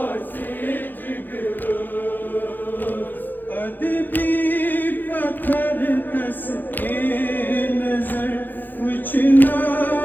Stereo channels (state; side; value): late; right; 0.088 ms